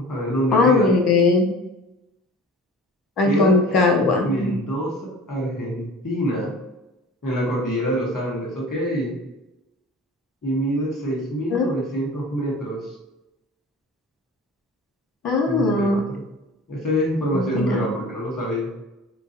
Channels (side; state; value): both; normal; correlation 0.41